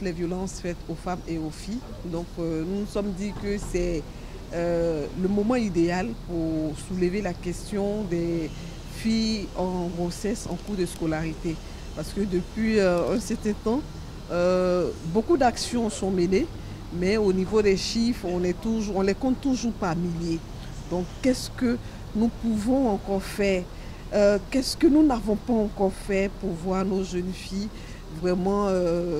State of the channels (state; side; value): identical; both; correlation 1.00